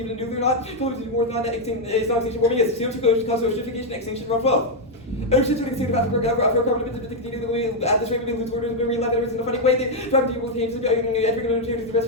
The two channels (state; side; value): normal; both; correlation 0.00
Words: nuclear or not? Close to more than that extinction warming is CO2 cause oceanification extinction around 12. Oceans would extinct about for carbon emissions to continue the way at this rate we lose orders when we left in a funny way. They try to deal with things entering the